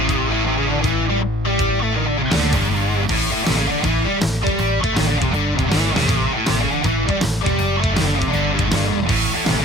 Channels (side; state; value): both; normal; correlation 0.57